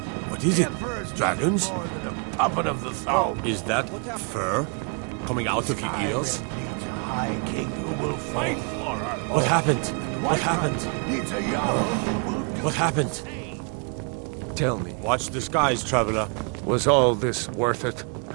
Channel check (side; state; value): left; quieter; 38.4 dB